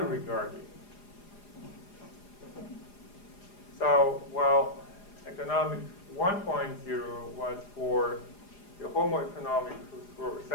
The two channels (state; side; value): late; right; 4.9 ms